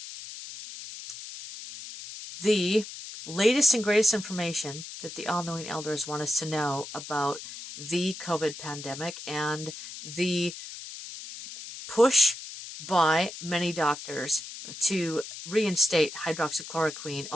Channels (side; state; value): left; noise; hiss, 11 dB below the sound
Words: the latest and greatest information that the all-knowing elders want us to know about the COVID pandemic and the push by many doctors to reinstate hydroxychloroquine,